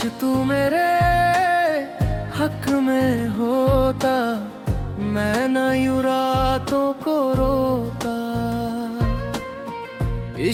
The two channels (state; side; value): identical; both; correlation 1.00